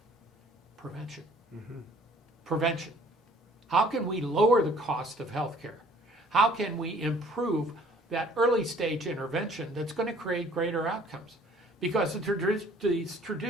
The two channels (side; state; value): both; normal; correlation 0.56